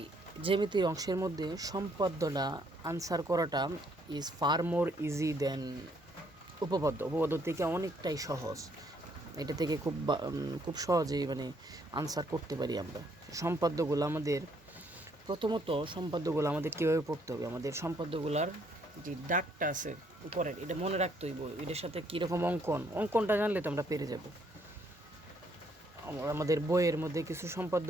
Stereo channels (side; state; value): both; normal; correlation 0.68